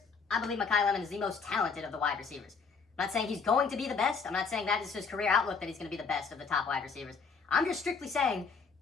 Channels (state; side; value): quieter; right; 5.2 dB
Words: I believe Makai Lemon is the most talented of the wide receivers. I'm not saying he's going to be the best. I'm not saying that is his career outlook that he's going to be the best of the top wide receivers. I'm just strictly saying,